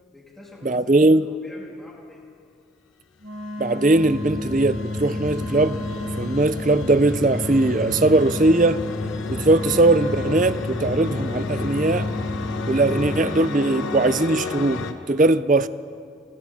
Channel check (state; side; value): normal; both; correlation 0.50